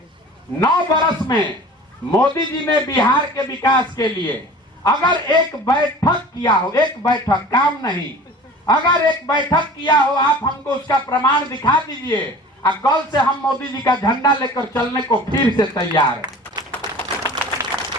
9 बरस में मोदी जी ने बिहार के विकास के लिए अगर एक बैठक किया हो, एक बैठक, काम नहीं, अगर एक बैठक किया हो, आप हमको उसका प्रमाण दिखा दीजिए। और कल से हम मोदी जी का झंडा लेकर चलने को फिर से तैयार है।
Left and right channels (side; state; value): both; normal; correlation 0.42